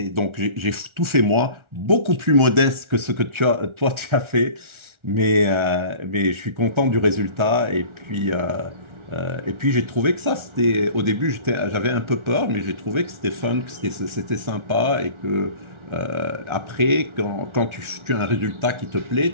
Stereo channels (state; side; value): late; left; 1.4 ms